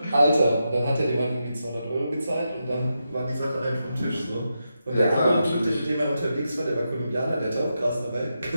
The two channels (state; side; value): inverted; both; correlation -0.87